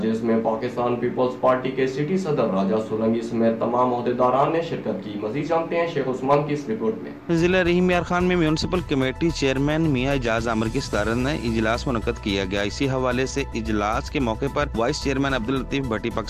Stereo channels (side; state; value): both; identical; correlation 1.00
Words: جس میں پاکستان پیپلز پارٹی کے سٹی صدر راجہ سولنگی سمیت تمام عہدیداران نے شرکت کی۔ مزید جانتے ہیں شیخ عثمان کی اس رپورٹ میں۔ ضلع رحیم یار خان میں میونسپل کمیٹی چیئرمین میاں اعجاز عامر کی صدارت میں اجلاس منعقد کیا گیا۔ اسی حوالے سے اجلاس کے موقع پر وائس چیئرمین عبداللطیف بھٹی،